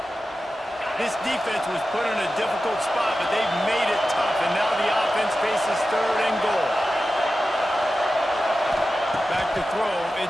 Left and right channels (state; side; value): normal; both; correlation 0.93